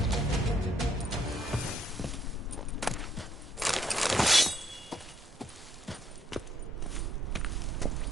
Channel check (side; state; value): both; normal; correlation 0.68